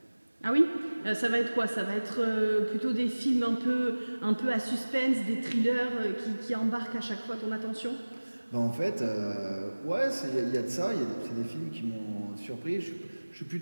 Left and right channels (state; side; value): inverted; both; correlation -1.00